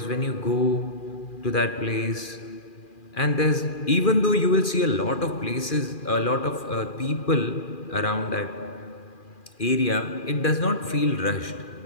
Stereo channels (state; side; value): late; right; 2.4 ms